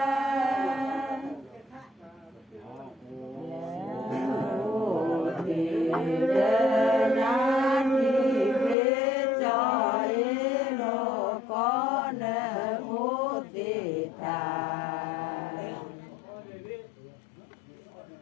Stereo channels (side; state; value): right; drops out; at 8.8 s